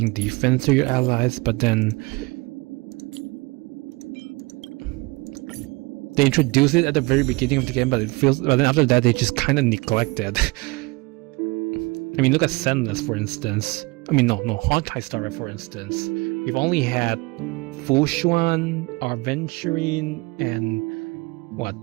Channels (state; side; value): quieter; left; 24.3 dB